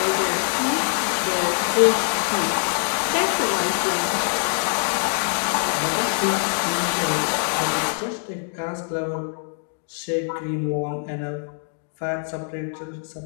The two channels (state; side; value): silent; right; 56 dB below the other